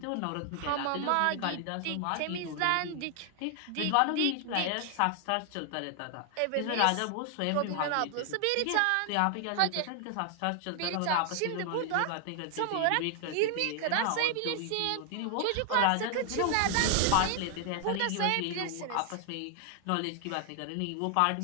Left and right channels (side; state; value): both; different; correlation 0.00